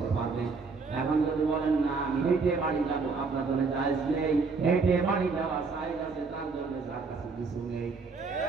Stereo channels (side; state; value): left; quieter; 4.5 dB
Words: পারবেন। এখন যদি বলেন না আমি হেঁটে বাড়ি যাবো, আপনার জন্য জায়েজ নেই। হেঁটে বাড়ি যাওয়া জায়েজ আছে, তার জন্য যার কাছে কিছু নেই।